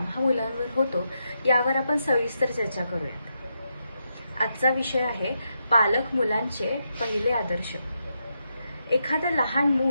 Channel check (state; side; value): inverted; both; correlation -0.83